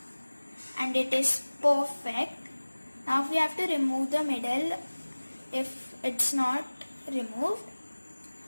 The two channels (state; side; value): inverted; both; correlation -1.00